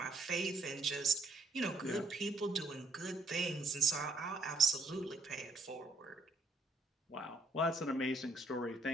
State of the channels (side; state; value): left; quieter; 3.1 dB